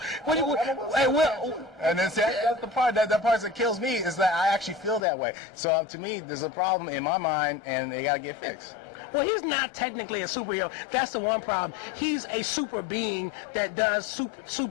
And that's the part that part that kills me is that I actually feel that way. So to me, there's a problem in my mind, and they got to get fixed. Well, he's not technically a superhero. That's the one problem. He's a super being that does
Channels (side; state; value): right; drops out; at 5.1 s